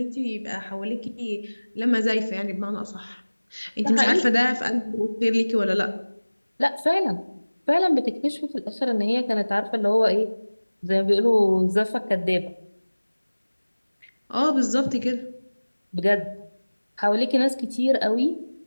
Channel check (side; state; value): both; inverted; correlation -1.00